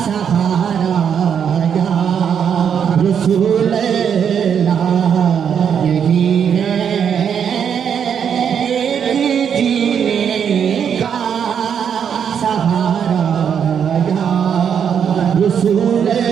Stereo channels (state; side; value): quieter; left; 7.8 dB